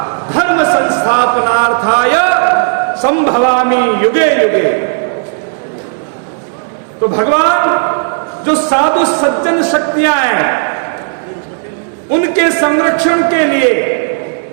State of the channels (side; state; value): left; silent; digital silence